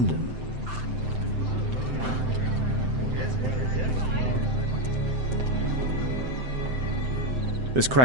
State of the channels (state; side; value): late; left; 7.8 ms